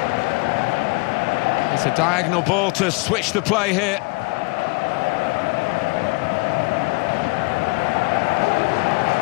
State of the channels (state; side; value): quieter; right; 27.7 dB